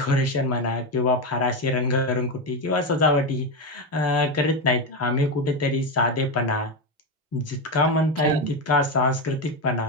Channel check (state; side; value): normal; both; correlation 0.12